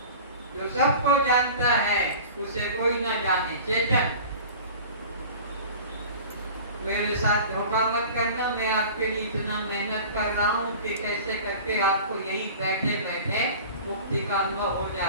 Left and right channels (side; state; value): both; inverted; correlation -0.40